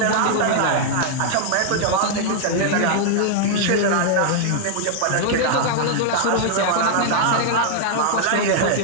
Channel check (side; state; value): both; different; correlation -0.01